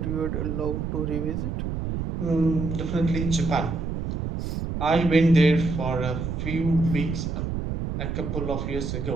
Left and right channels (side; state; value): right; noise; rumble, 3 dB below the sound